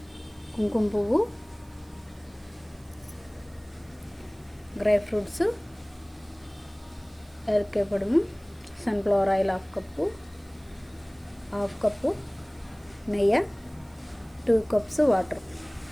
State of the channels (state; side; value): noise; right; hiss, 29 dB below the sound